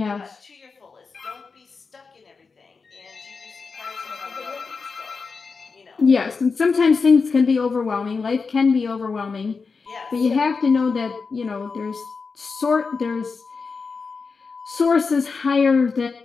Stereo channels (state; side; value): quieter; right; 4.8 dB